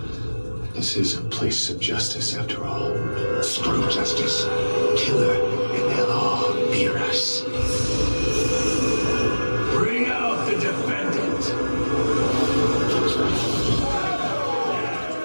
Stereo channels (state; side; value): inverted; both; correlation -1.00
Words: This is a place of justice, after all. Screw justice. Kill her, and they'll all fear us. Bring out the defendant.